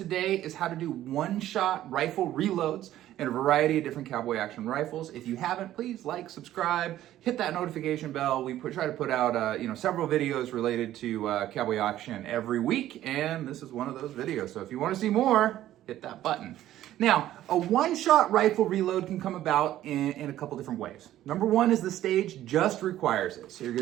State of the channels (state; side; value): quieter; left; 13.2 dB